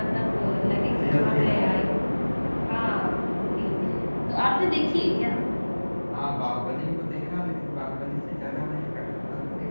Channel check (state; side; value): inverted; both; correlation -1.00